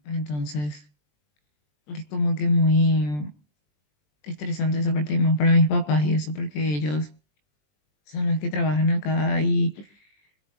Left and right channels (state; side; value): late; right; 20 ms